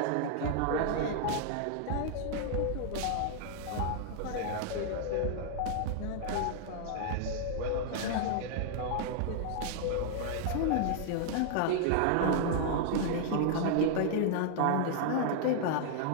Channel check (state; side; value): different; both; correlation -0.01